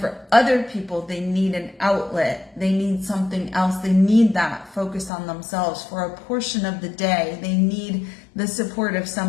other people, they need an outlet. They need something else. They need that focus on themselves for a portion of the day. They need the support of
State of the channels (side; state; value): right; drops out; at 5.1 s